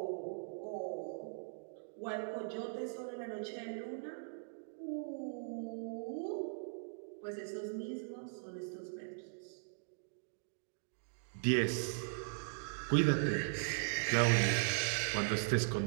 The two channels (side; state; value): left; silent; digital silence